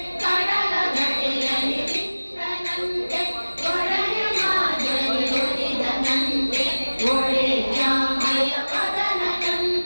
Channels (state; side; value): inverted; both; correlation -1.00